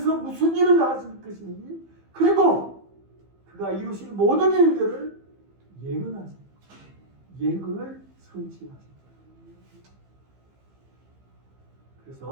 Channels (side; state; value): left; late; 15 ms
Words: 무슨 일을 하실 것인지 그리고 그가 이루실 모든 일들을 예언하십니다. 예언을 성취하십니다.